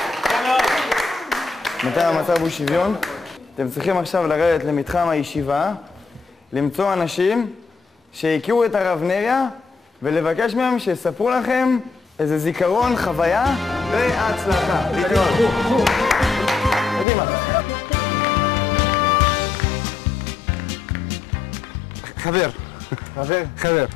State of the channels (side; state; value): right; drops out; at 17.1 s